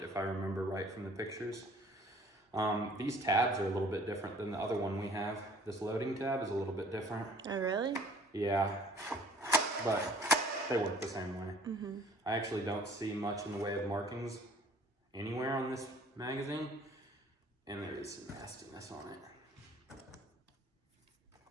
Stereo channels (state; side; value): normal; both; correlation 0.53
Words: if I remember right from the pictures. These tabs are a little bit different than the other one we have. This loading tab is a little bit different. Oh, really? Yeah, but they work the same way. I actually don't see much in the way of markings anywhere on this magazine, and there is some nastiness on it.